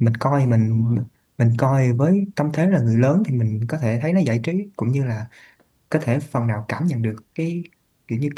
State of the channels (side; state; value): both; identical; correlation 1.00